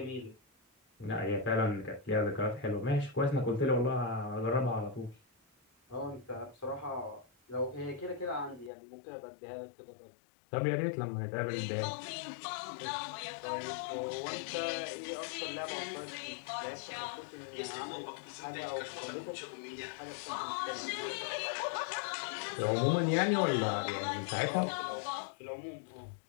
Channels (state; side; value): drops out; right; at 8.7 s